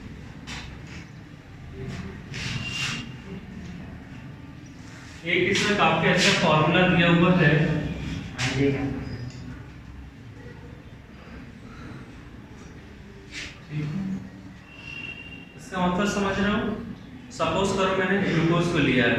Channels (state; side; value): identical; both; correlation 1.00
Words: एक इसमें काफी अच्छा फॉर्मूला दिया हुआ है। इसका मतलब समझ रहे हो? सपोज करो मैंने ग्लूकोज को लिया